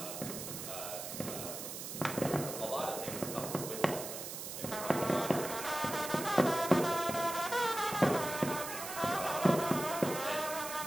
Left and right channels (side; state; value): right; noise; hiss, 7 dB below the sound